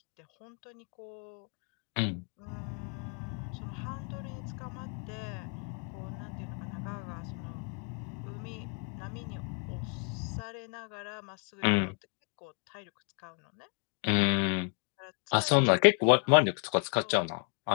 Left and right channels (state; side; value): quieter; right; 39.3 dB